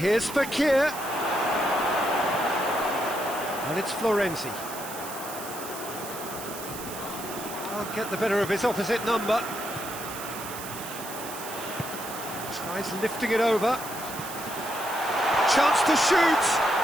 Fakir. And it's Florenzi. Can't get the better of his opposite number. Tries lifting it over. Chance to shoot.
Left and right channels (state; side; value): noise; right; hiss, 11 dB below the sound